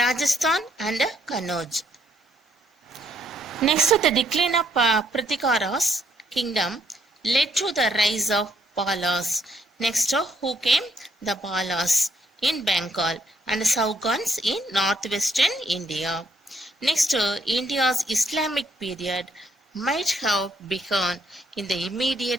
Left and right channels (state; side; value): normal; both; correlation 0.71